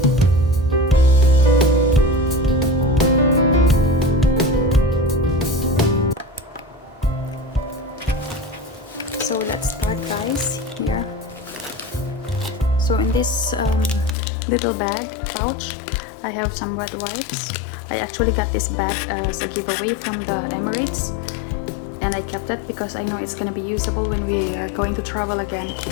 So let's start, guys. Here. So in this little bag pouch, I have some wet wipes. I actually got this bag as a giveaway from the Emirates, and I kept it because I know it's gonna be usable when we are going to travel again.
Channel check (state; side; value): drops out; right; at 14.2 s